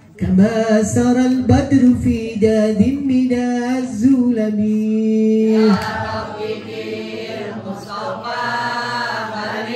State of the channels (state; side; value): identical; both; correlation 1.00